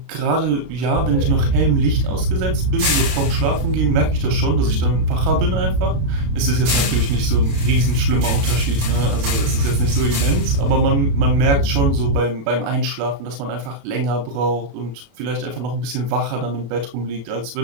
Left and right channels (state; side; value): late; left; 32 ms